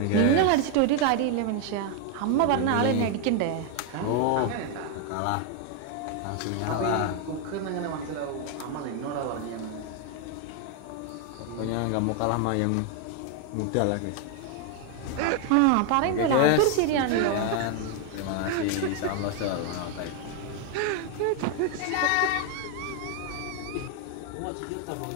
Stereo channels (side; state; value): both; different; correlation 0.00